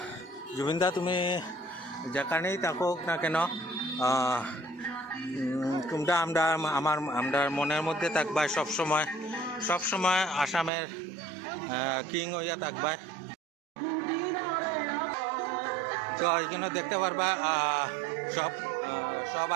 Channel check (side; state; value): left; drops out; at 10.7 s